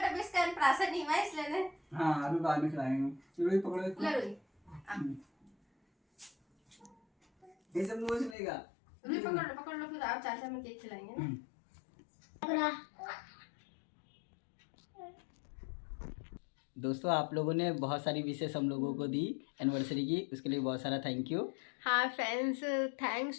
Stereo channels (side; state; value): right; drops out; at 8.3 s